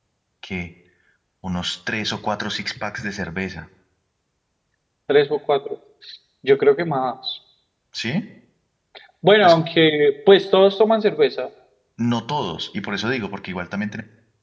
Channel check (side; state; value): both; identical; correlation 1.00